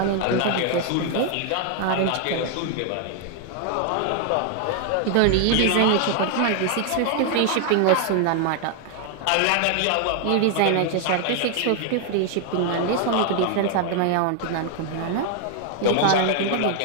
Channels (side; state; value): both; different; correlation 0.00